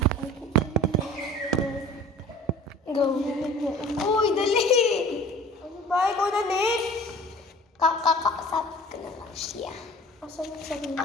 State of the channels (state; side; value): normal; both; correlation 0.44